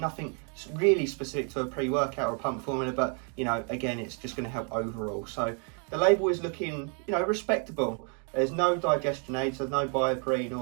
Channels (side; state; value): left; quieter; 39.6 dB